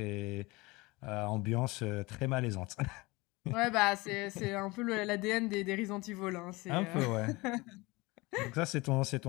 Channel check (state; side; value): quieter; right; 23.2 dB